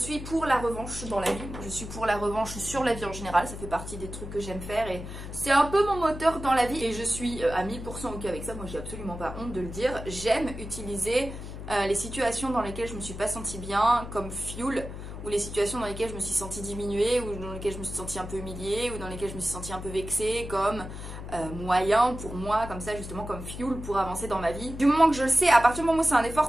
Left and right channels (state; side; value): noise; left; hum, 9 dB below the sound